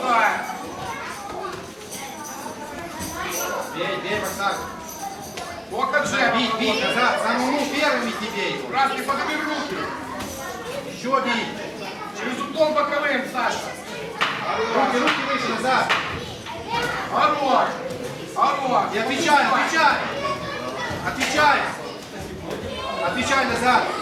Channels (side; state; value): both; identical; correlation 1.00